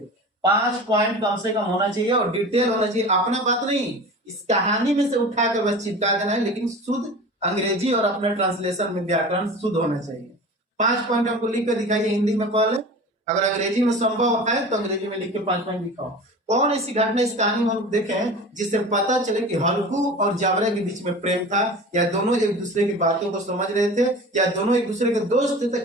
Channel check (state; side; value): normal; both; correlation 0.36